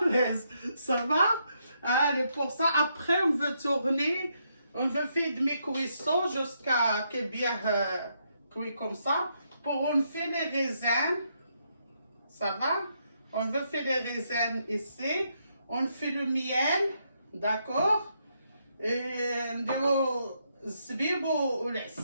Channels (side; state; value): both; inverted; correlation -0.77